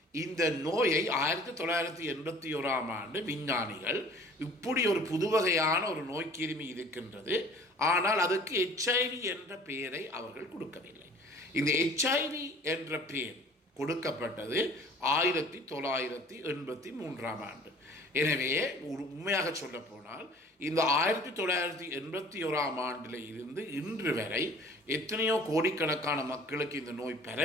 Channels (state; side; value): normal; both; correlation 0.49